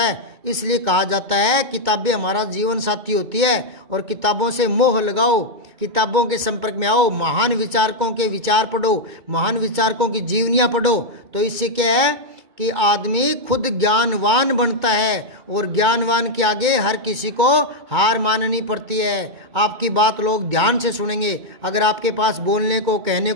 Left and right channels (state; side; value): late; left; 2.2 ms